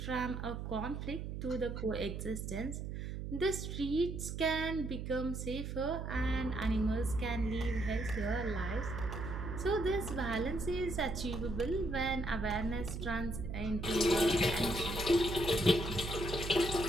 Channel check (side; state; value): right; noise; hum, 5 dB below the sound